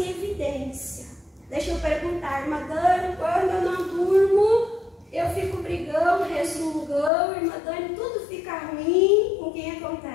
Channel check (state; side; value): drops out; right; at 7.1 s